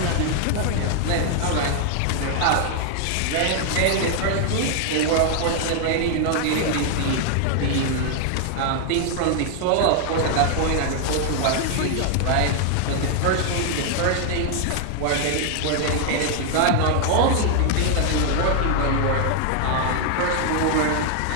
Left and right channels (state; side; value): different; both; correlation 0.00